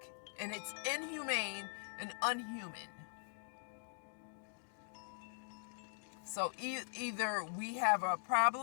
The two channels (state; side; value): silent; right; digital silence